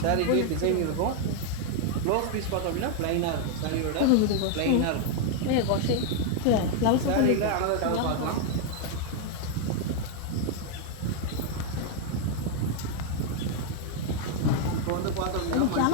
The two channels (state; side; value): different; both; correlation 0.00